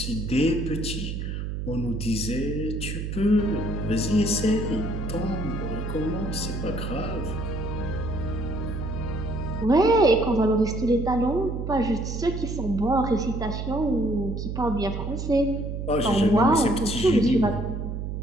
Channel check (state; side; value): noise; right; hum, 4 dB below the sound